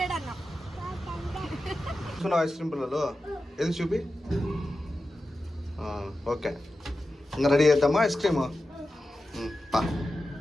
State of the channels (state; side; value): normal; both; correlation 0.92